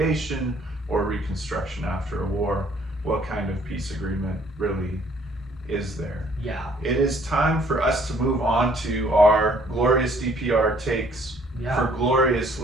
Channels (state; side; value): normal; both; correlation 0.60